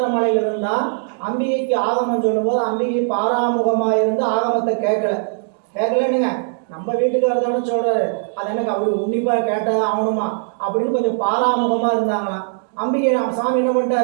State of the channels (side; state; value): left; silent; digital silence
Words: மலையில இருந்தா அம்பிகைக்கு ஆகமம் சொல்லும் போது அம்பிகை பாராமுகமாக இருந்து ஆகமத்தை கேட்கலன்னுங்க. நம்ம வீட்டுக்காரர் தானே சொல்றாரு, அது எனக்கு அப்படி உன்னிப்பா கேட்டதான் ஆகணுமா அப்படின்னு கொஞ்சம் பாராமுகமா இருந்தாங்களாம். அம்பிகை சாமி என்ன